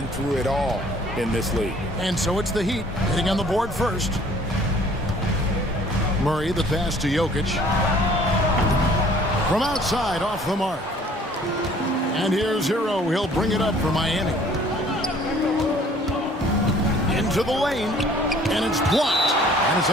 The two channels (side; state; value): both; normal; correlation 0.55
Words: through it all in this league. And so it's the Heat hitting on the board first. Murray, the pass to Jokic. From outside, off the mark. And here's Hero. He'll bring it up for Miami. Into the lane, and it's blocked. And it's